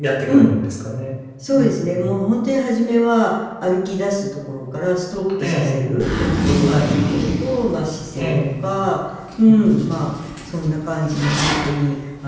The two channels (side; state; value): both; identical; correlation 1.00